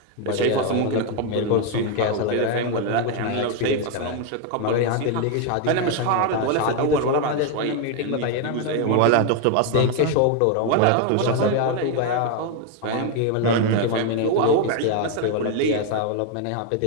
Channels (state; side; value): different; both; correlation 0.01